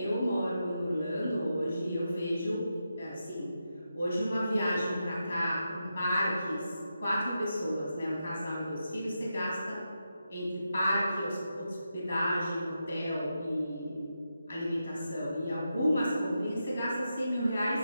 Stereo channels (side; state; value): both; inverted; correlation -0.87